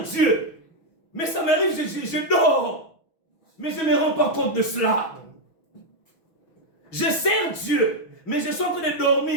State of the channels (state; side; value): late; right; 6.1 ms